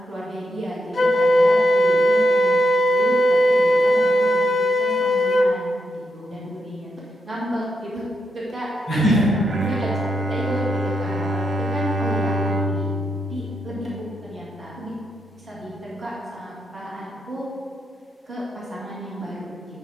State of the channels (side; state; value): both; normal; correlation 0.83